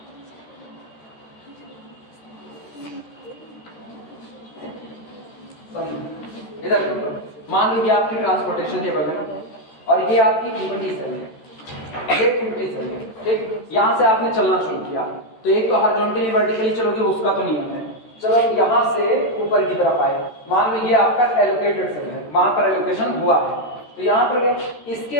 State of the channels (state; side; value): late; right; 13 ms